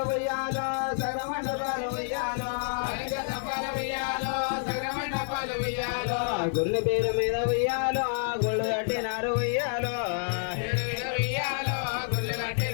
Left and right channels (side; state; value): right; silent; digital silence